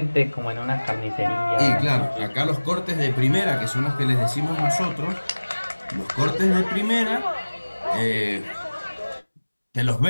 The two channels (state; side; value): inverted; both; correlation -1.00